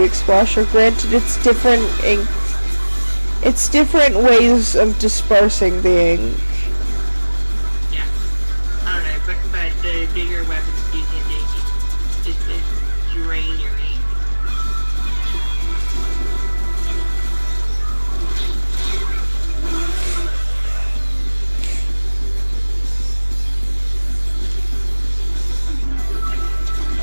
Explosion. Granted, it's different ink. It's different ways of dispersing the ink. Yeah. I don't know, but the bigger weapons do tend to just drain your ink.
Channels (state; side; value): inverted; both; correlation -1.00